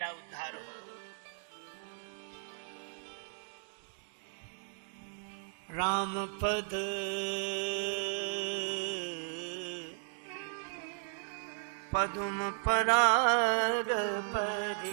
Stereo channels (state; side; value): silent; left; digital silence